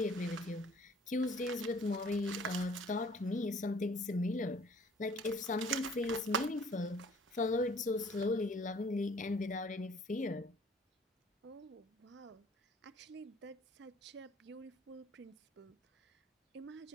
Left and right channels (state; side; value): normal; both; correlation 0.55